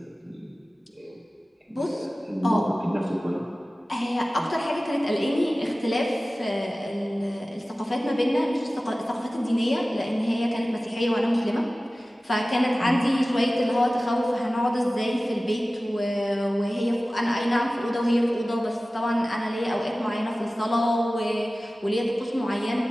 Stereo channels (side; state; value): both; normal; correlation 0.97